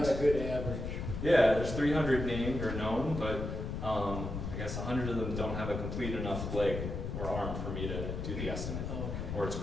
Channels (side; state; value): left; noise; rumble, 4 dB below the sound